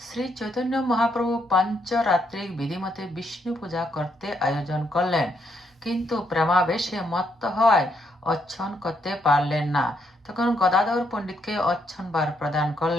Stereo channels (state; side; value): normal; both; correlation 0.76